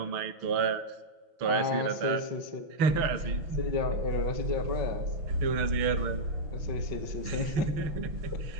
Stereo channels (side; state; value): left; late; 6.0 ms